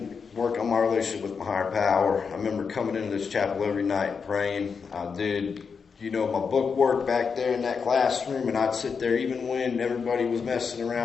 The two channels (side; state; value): right; quieter; 5.7 dB